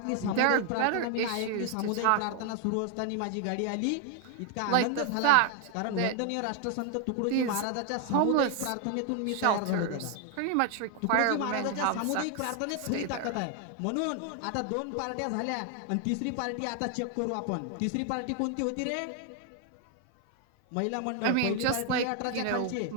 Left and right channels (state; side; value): different; both; correlation 0.00